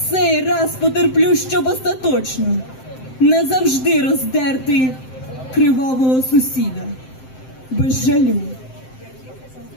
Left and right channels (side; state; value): right; late; 7.7 ms